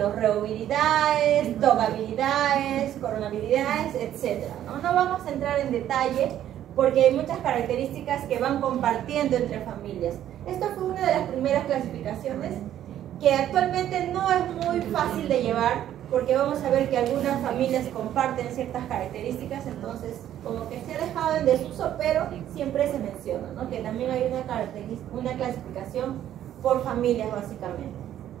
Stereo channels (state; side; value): quieter; left; 11.5 dB